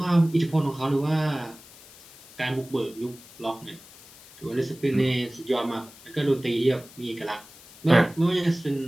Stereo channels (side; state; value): left; noise; hiss, 21 dB below the sound